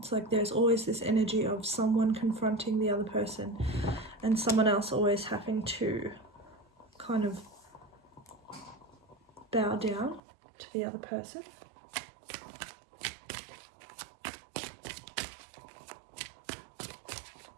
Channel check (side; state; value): left; drops out; at 10.2 s